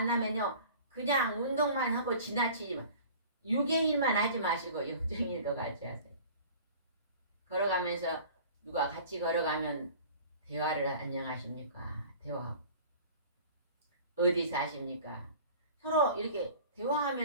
그냥 운동만 하고 지나치지만 6의 일만 하지 마시고 영적인 일도 같이 하세요. 걸어가면서 누가 같이 걸어가면 대화를 안녕하십니까? 대화하고 어디 사십니까? 서로 이렇게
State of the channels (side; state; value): both; inverted; correlation -0.44